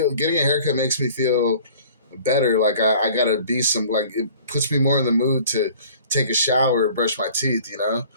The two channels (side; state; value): both; inverted; correlation -0.49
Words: getting a haircut makes me feel better. Like I gotta be like, it puts me more in the mood to take a shower, brush my teeth,